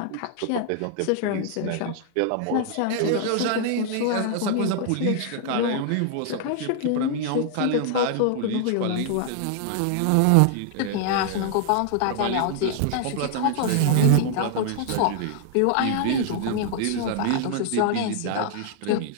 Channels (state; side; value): different; both; correlation 0.00